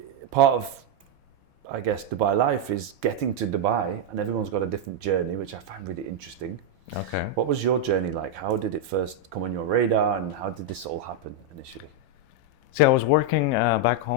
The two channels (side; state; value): both; normal; correlation 0.01